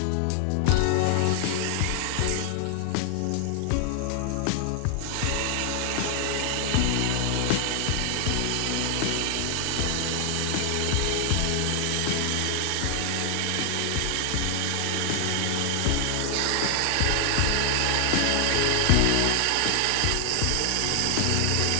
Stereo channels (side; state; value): both; different; correlation 0.00